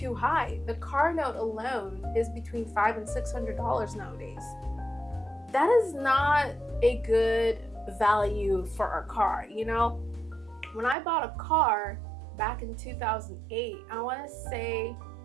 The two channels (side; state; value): left; drops out; at 11.0 s